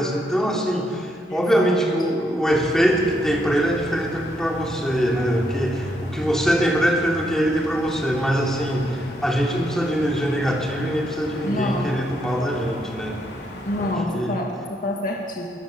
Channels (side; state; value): both; normal; correlation 0.76